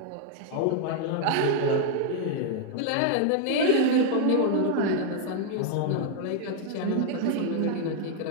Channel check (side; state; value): both; different; correlation 0.00